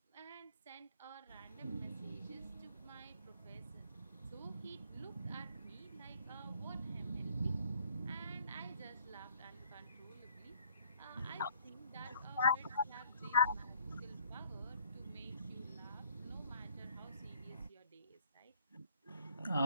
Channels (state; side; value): inverted; both; correlation -0.60